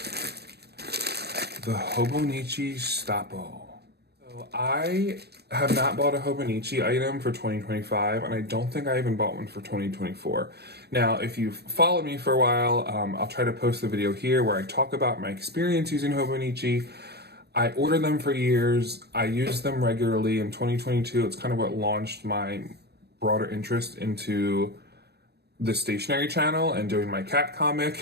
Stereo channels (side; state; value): left; late; 0.47 ms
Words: the Hobonichi Stappo. So I have not bought a Hobonichi item for 2025, and I don't think I even bought one for 2024. Now, if you've followed me for a while, I'll try to post a video here where I talk about my experience using Hobonichi. I ordered them for years. I use them regularly. In 2022, it's kind of what launched my broader interest into the stationery channel and doing my cat comic